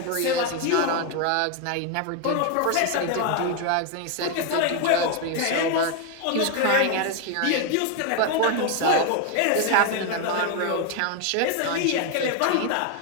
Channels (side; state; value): both; different; correlation 0.01